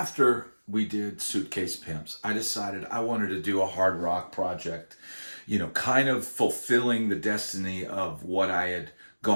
we did Suitcase Pimps, I decided I wanted to do a hard rock project, kind of fulfilling the destiny of what I had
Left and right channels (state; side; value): inverted; both; correlation -1.00